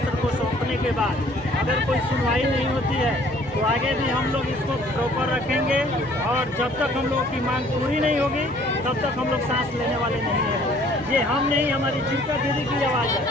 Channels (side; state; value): both; normal; correlation 0.57